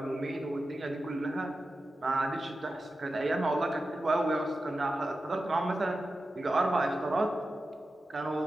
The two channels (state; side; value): normal; both; correlation 0.92